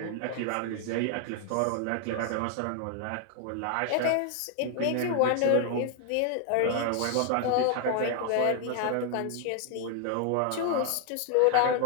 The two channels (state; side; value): different; both; correlation 0.00